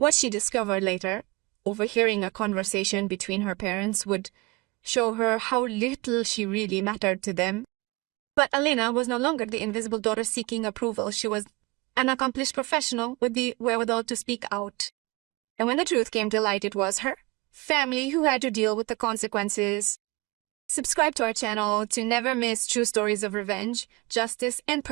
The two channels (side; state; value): left; quieter; 24.8 dB